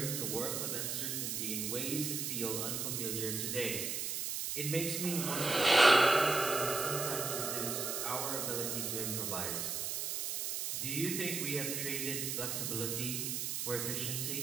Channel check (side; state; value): right; noise; hiss, 2 dB below the sound